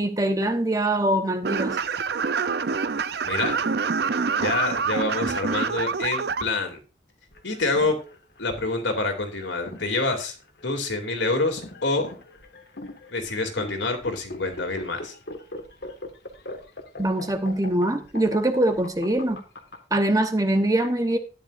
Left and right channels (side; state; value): both; normal; correlation 0.36